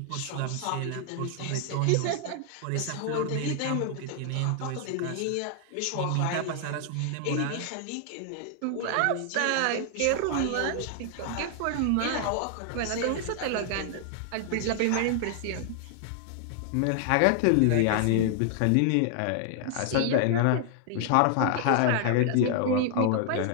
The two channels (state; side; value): different; both; correlation 0.00